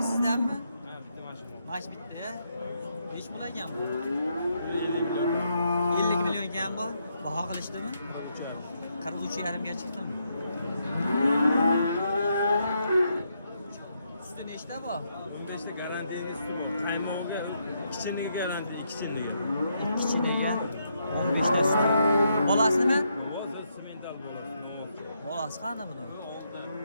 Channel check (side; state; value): both; inverted; correlation -0.78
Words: sizdanmi? Ha, bitta mashina. Mash bitta ya. Nech pul ekan bu? 50 million ekan bu. Baho qilishdimi? 43,5 ga chiqdimi? Usti nechta bu? Bunda işte garantiyani qaymog'iga kichiniga garantiya, ikkichiniga. Kichiniga 15 ta usti. Bolasi nima? Hozir semental bo'ladi. Bolasi qani buni?